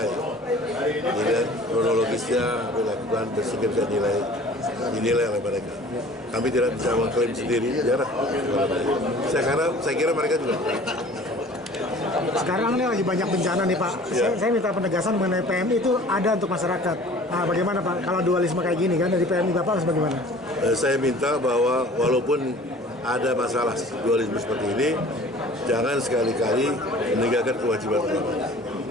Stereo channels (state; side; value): normal; both; correlation 0.47